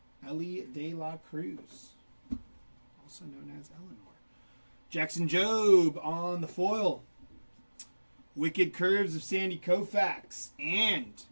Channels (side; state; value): both; inverted; correlation -1.00